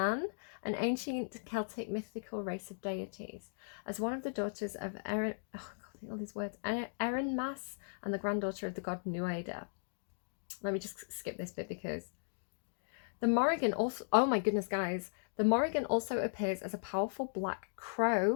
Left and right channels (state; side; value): silent; right; digital silence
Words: an ancient Celtic mythical race of deities, as one of the daughters of Erin, all these words, Erin Mas, and the granddaughter of the god Nuada. Let me just skip this bit because the Morrigan also, oh my goodness, guys, the Morrigan also appears as a powerful black